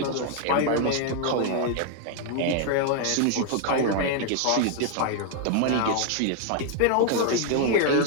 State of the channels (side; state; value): both; different; correlation 0.00